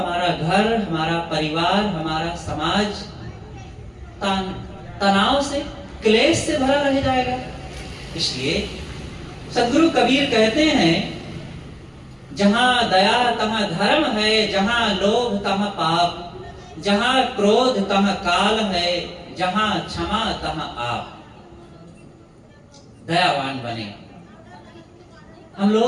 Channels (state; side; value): identical; both; correlation 1.00